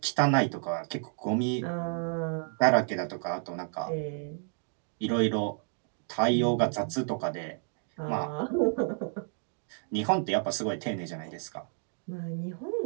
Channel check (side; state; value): left; silent; 57 dB below the other